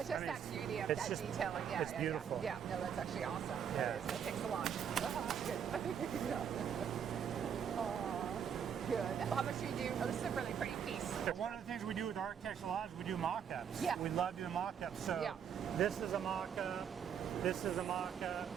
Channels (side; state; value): left; quieter; 8.0 dB